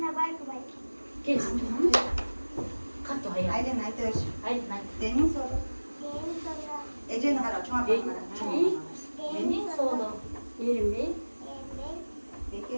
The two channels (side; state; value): both; inverted; correlation -1.00